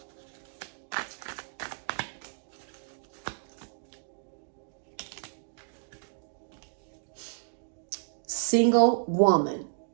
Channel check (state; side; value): silent; left; digital silence